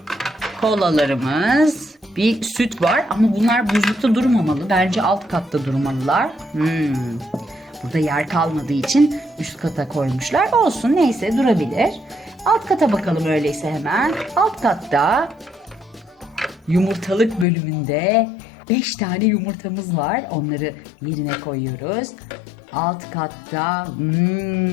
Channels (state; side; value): drops out; right; at 17.4 s